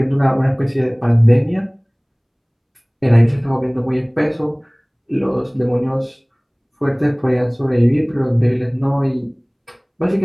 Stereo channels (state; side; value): identical; both; correlation 1.00